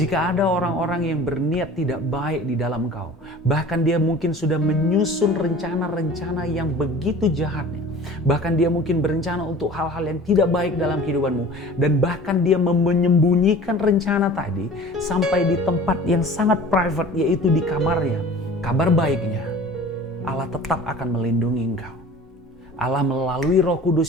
ada orang-orang yang berniat tidak baik di dalam engkau, bahkan dia mungkin sudah menyusun rencana-rencana yang begitu jahatnya, bahkan dia mungkin berencana untuk hal-hal yang tidak baik dalam kehidupanmu, dan bahkan dia menyembunyikan rencana tadi sampai di tempat yang sangat private, yaitu di kamarnya. Kabar baiknya, Allah tetap akan melindungi engkau. Allah melalui Roh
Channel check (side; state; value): both; normal; correlation 0.43